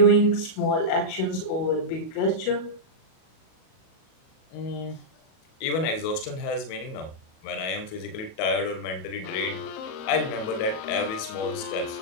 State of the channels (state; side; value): late; right; 37 ms